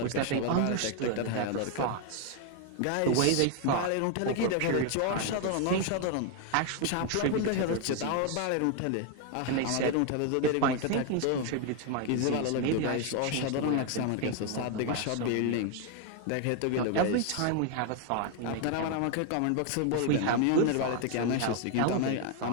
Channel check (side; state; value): both; different; correlation 0.01